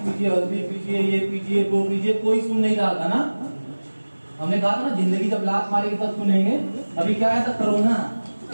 हल्दी पीजिए, ये पीजिए, वो पीजिए, कोई सुन नहीं रहा था ना। हमने कहा था ना, जिंदगी जब लात मारेगी तब सुनेंगे। अभी क्या है था, कोरोना,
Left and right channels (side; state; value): both; inverted; correlation -1.00